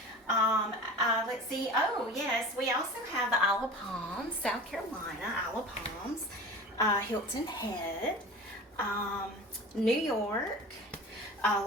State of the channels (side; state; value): both; normal; correlation 0.36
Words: Let's see. Oh yes, we also have the Isle of Palms, South Carolina, Isle of Palms, Hilton Head, New York,